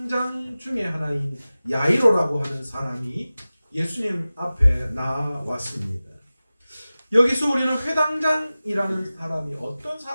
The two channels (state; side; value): inverted; both; correlation -0.96